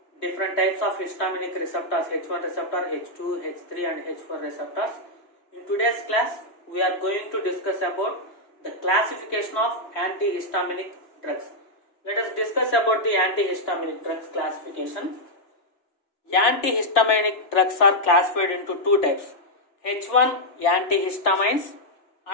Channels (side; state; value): right; late; 2.9 ms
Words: different types of histaminic receptors, H1 receptor, H2, H3 and H4 receptors. In today's class we are going to discuss about the classification of antihistaminic drugs. Let us discuss about the antihistaminic drugs classification. Antihistaminic drugs are classified into two types: H1 antihistamines